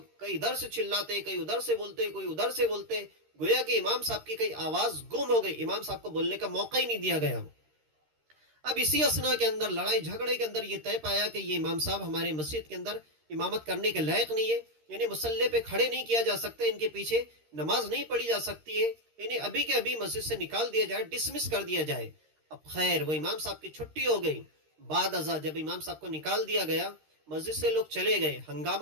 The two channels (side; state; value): left; late; 13 ms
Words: کئی ادھر سے چلاتے، کئی ادھر سے بولتے، کوئی ادھر سے بولتے، گویا کہ امام صاحب کی کئی آواز گم ہو گئی، امام صاحب کو بولنے کا موقع ہی نہیں دیا گیا۔ اب اسی اسنا کے اندر لڑائی جھگڑے کے اندر یہ طے پایا کہ یہ امام صاحب ہمارے مسجد کے اندر امامت کرنے کے لائق نہیں ہے، یعنی مسلح پہ کھڑے نہیں کیا جا سکتے، ان کے پیچھے نماز نہیں پڑھی جا سکتی ہے، انہیں ابھی کے ابھی مسجد سے نکال دیا جائے، ڈسمس کر دیا جائے۔ اب خیر، وہ امام صاحب کی چھٹی ہو گئی۔ بعد ازاں جب امام صاحب کو نکال دیا گیا، مسجد سے لوگ چلے گئے،